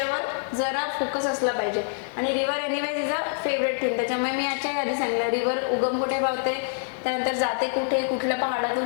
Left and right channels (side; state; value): right; silent; 61 dB below the other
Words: जरा फोकस असला पाहिजे. आणि river anyways is a favourite thing, त्याच्यामुळे मी याच्या आधी सांगितलं रिव्हर उगम कुठे पावते, त्यानंतर जाते कुठे, कुठल्या